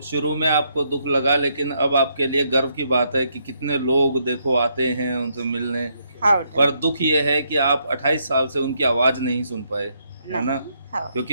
शुरू में आपको दुख लगा, लेकिन अब आपके लिए गर्व की बात है कि कितने लोग देखो आते हैं उनसे मिलने। हाँ बेटा। पर दुख ये है कि आप 28 साल से उनकी आवाज़ नहीं सुन पाए, है ना? हाँ,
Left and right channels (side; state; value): both; inverted; correlation -0.75